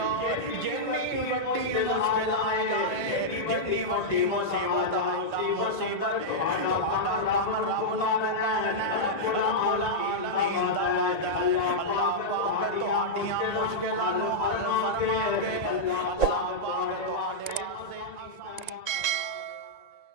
جتنی بڑی مشکل آ جائے، جتنی بڑی مصیبت آ جائے، مصیبت اندر تہاڈا کم رب نو پکارنا ہے، رب العالمین دا وعدہ ہے اللہ پاک تہاڈیاں مشکلاں نو حل فرما کے اللہ پاک تہاڈے واسطے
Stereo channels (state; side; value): late; right; 1.9 ms